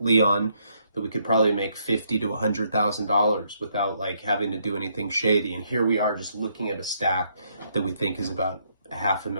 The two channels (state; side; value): inverted; both; correlation -0.73